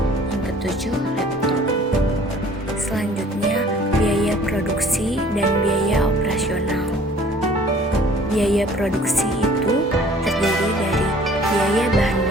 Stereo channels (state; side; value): normal; both; correlation 0.53